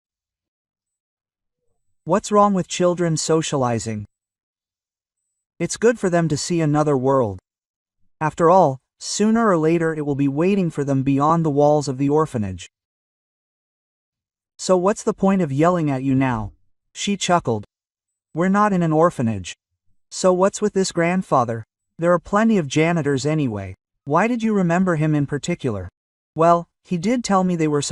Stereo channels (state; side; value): identical; both; correlation 1.00